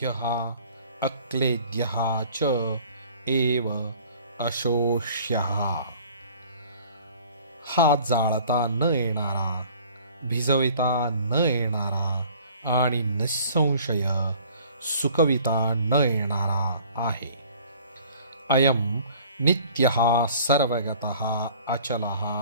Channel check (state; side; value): inverted; both; correlation -0.50